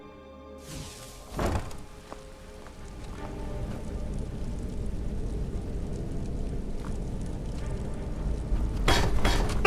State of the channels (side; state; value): both; identical; correlation 1.00